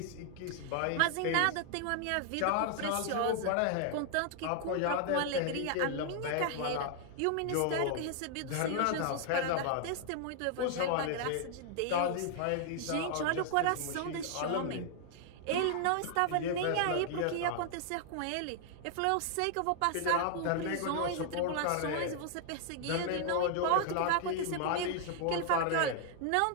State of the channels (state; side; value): different; both; correlation 0.00